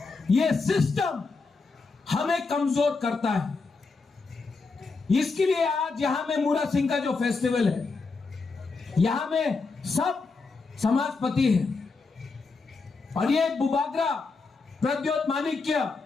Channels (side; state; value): right; quieter; 4.2 dB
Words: ये सिस्टम हमें कमजोर करता है। इसके लिए आज यहां में मूरा सिंह का जो फेस्टिवल है, यहां में सब समाजपति है और ये बुबागरा प्रद्योत माणिक्य,